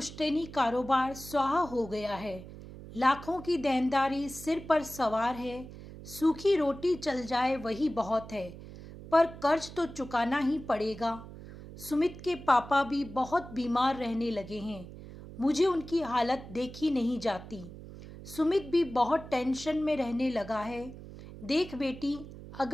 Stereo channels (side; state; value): right; noise; hum, 14 dB below the sound